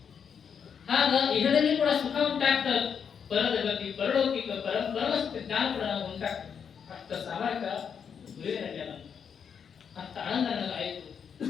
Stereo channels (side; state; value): right; quieter; 7.1 dB